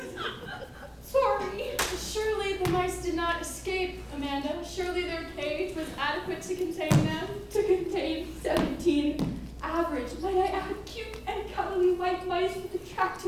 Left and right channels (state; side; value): identical; both; correlation 1.00